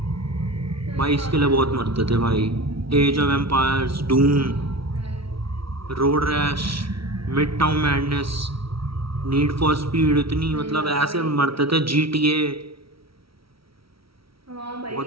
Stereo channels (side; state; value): left; late; 0.75 ms